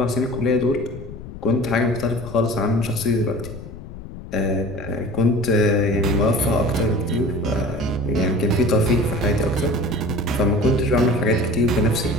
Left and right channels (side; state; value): left; noise; rumble, 13 dB below the sound